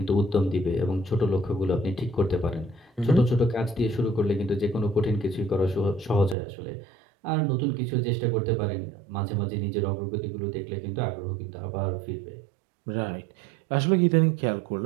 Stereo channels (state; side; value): drops out; left; at 6.4 s